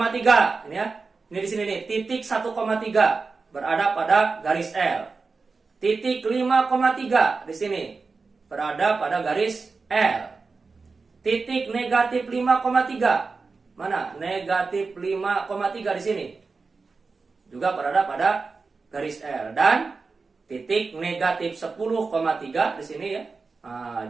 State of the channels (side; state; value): left; quieter; 4.3 dB